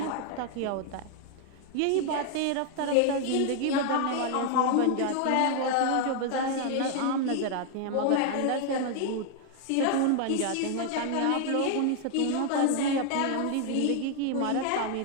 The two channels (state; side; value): different; both; correlation 0.00